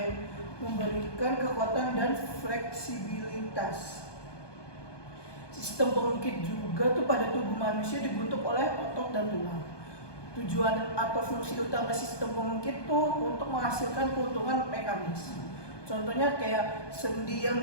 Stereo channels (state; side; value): late; right; 1.2 ms